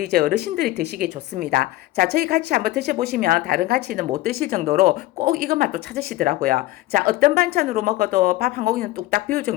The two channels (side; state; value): right; quieter; 17.3 dB